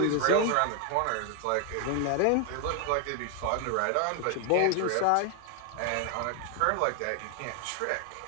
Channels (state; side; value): different; both; correlation 0.00